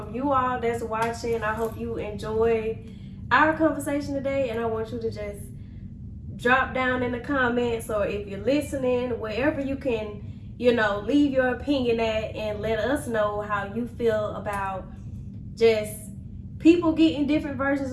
you all that's watching. I hope you enjoyed our conversation today, and I want you to just drop down in the comments, or if you're listening, wherever you can, leave your opinion at, and let us know how you feel about just people getting different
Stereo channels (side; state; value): both; identical; correlation 1.00